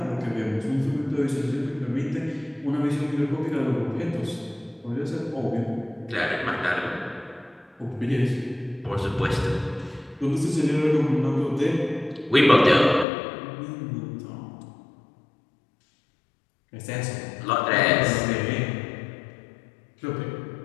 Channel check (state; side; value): drops out; right; at 13.1 s